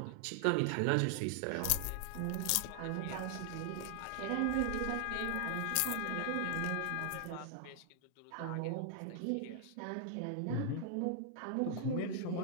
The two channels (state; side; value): different; both; correlation 0.00